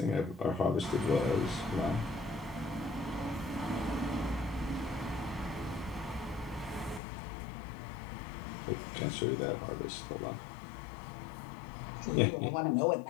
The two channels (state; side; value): drops out; right; at 7.0 s